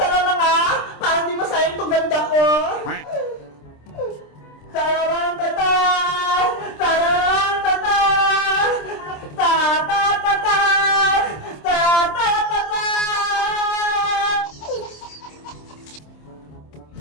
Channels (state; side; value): late; right; 26 ms